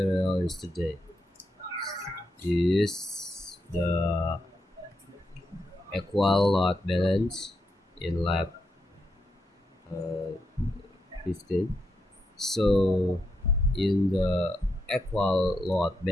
yesterday is the equal load balance in lab 15. So in the equal load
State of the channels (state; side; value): normal; both; correlation 0.83